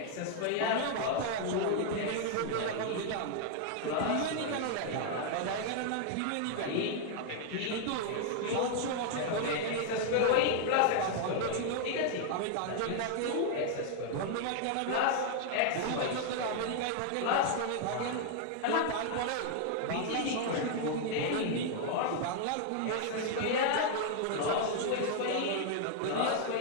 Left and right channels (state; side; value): different; both; correlation 0.00